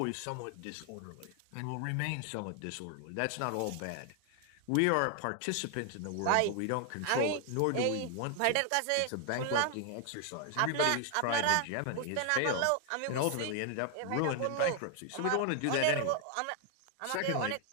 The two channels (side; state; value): both; different; correlation 0.00